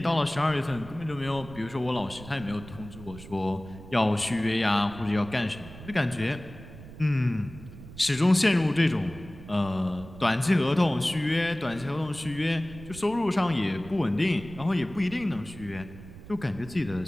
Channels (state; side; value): noise; right; rumble, 16 dB below the sound